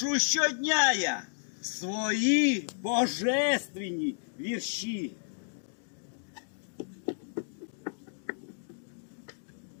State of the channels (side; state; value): right; silent; digital silence